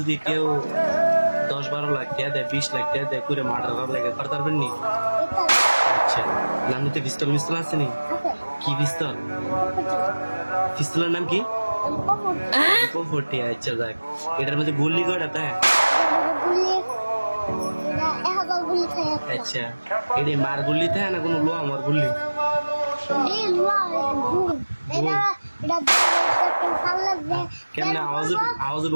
কেউ 10-12 লাখ টাকা দেয় 20 লাখ টাকা দেয় করে মার্ডার করার লাগে করতে পারবেন নি? আচ্ছা আপনি পিস্তল মিস্তল আছে নি? কি পিস্তল? পিস্তলের নাম কি? পপটি। আচ্ছা যাক এটার মধ্যে গুলি কয়টা তাই? আচ্ছা এটা মার গুলি তাই না কোনো লোয়া আমার গুলি? কেমনে আওয়াজ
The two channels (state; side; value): inverted; both; correlation -1.00